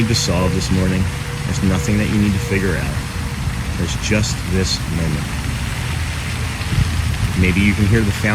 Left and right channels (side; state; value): both; identical; correlation 1.00